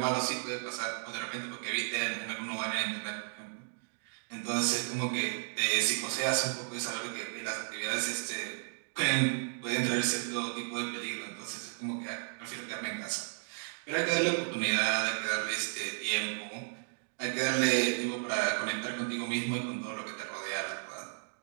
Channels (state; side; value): silent; left; digital silence